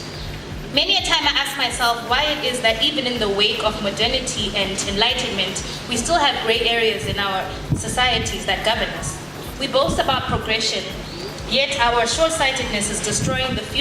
Many a time I ask myself why it is that even in the wake of modernity and enlightenment, we still have gray areas in our societies that govern us. We boast about progression, yet our short-sightedness is destroying the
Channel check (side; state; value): both; identical; correlation 1.00